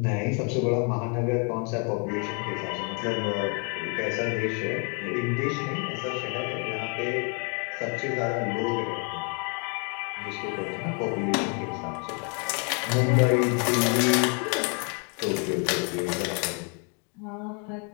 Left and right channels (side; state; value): right; quieter; 37.7 dB